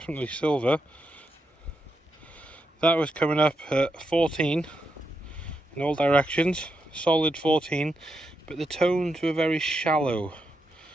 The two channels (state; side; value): normal; both; correlation 0.84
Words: silver. That was coming up at 14 in all directions, solid 14, but the tones were very shallow.